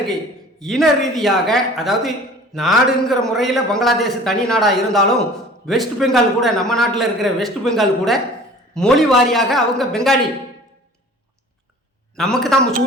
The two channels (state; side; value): normal; both; correlation 0.45